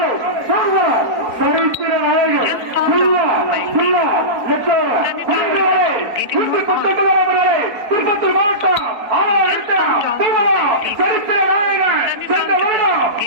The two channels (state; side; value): late; left; 4.4 ms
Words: திருப்பத்தூர் மாவட்டம் சரித்திர நாயகன் சென்ற வருடம்